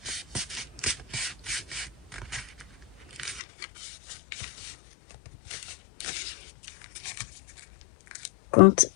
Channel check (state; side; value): drops out; right; at 3.4 s